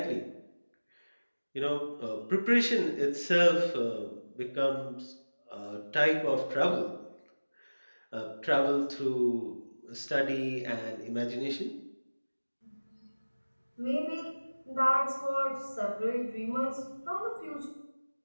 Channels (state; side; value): inverted; both; correlation -1.00